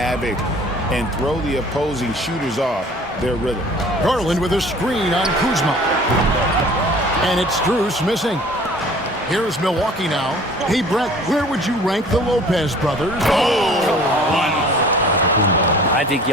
and throw the opposing shooters off their rhythm. Garland with a screen on Kuzma. And it's Strus missing. Here's Milwaukee now. Hey, Brett, where would you rank the Lopez brothers? I think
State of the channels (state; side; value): normal; both; correlation 0.49